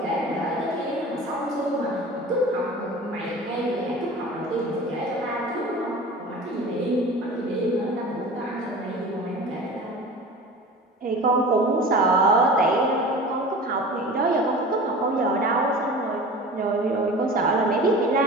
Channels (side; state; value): both; normal; correlation 0.37